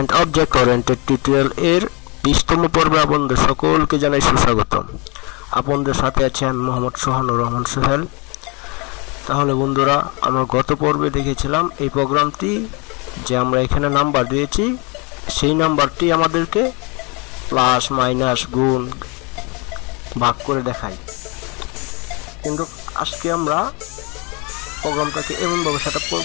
object oriented tutorial এর 20তম পর্বে আপনাদের সকলকে জানাই সুস্বাগতম। আপনাদের সাথে আছি আমি মোহাম্মদ সুহানুর রহমান সোহেল। তাহলে বন্ধুরা, আমরা গত পর্বে দেখেছিলাম এই প্রোগ্রামটি যে আমরা এখানে নাম্বার দিয়েছি, সেই নাম্বারটি আমাদেরকে প্লাস মাইনাস গুণ ভাগ করে দেখায়। কিন্তু আজকে আমরা প্রোগ্রামটাকে এমনভাবে সেট আপ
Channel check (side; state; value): right; quieter; 29.9 dB